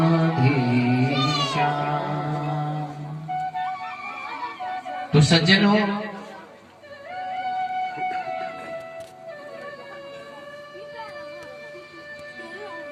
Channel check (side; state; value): both; identical; correlation 1.00